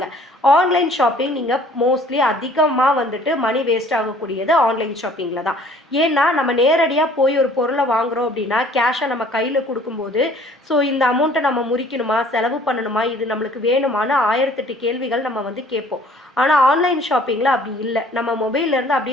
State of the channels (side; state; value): both; normal; correlation 0.54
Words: ஆன்லைன் ஷாப்பிங் நீங்கள் மோஸ்ட்லி அதிகமாக வந்துட்டு மணி வேஸ்ட் ஆகக்கூடியது ஆன்லைன் ஷாப்பிங்கில் தான். ஏன்னா நம்ம நேரடியாக போய் ஒரு பொருளை வாங்குகிறோம் அப்படின்னா கேஷை நம்ம கையில் கொடுக்கும்போது ஸோ இந்த அமௌண்ட்டை நம்ம முறிக்கணுமா, செலவு பண்ணணுமா, இது நம்மளுக்கு வேணுமான்னு 1008 கேள்விகள் நம்ம வந்து கேட்போம். ஆனால் ஆன்லைன் ஷாப்பிங்கில் அப்படி இல்லை. நம்ம மொபைல்லேருந்து